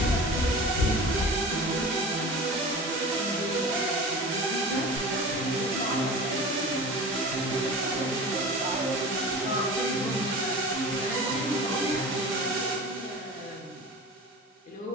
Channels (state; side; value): normal; both; correlation 0.35